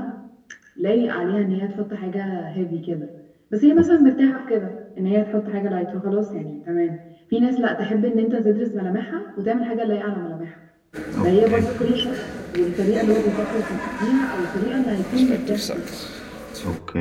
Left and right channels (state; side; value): identical; both; correlation 1.00